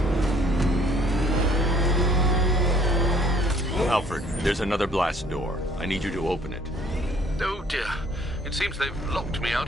Alfred, there's another blast door. I need you to open it. Oh dear. It seems they've locked me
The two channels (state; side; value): normal; both; correlation 0.60